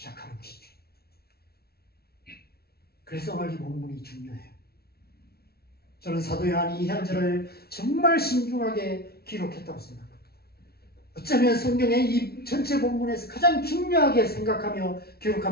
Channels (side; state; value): right; late; 0.45 ms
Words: 것이죠. 그래서 오늘 이 본문이 중요해요. 저는 사도 요한이 이 현절을 정말 신중하게 기록했다고 생각합니다. 어쩌면 성경의 이 전체 본문에서 가장 중요하게 생각하며